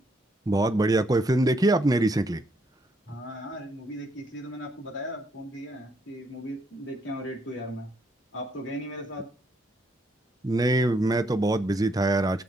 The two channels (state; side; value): normal; both; correlation 0.73